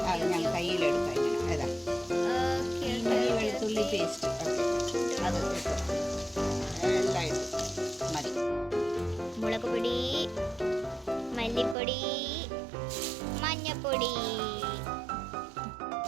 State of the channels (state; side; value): drops out; left; at 11.8 s